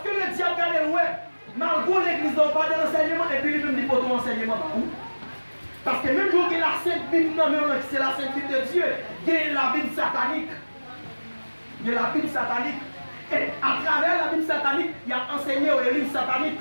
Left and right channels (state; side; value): inverted; both; correlation -1.00